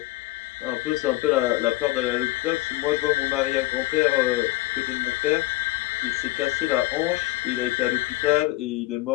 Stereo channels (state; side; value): quieter; right; 18.5 dB